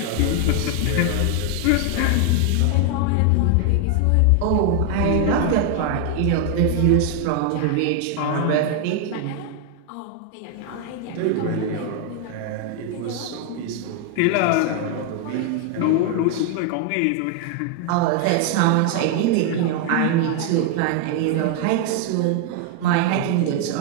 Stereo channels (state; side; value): different; both; correlation 0.00